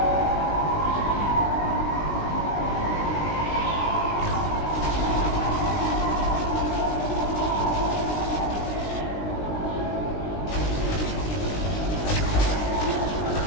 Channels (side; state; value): right; late; 19 ms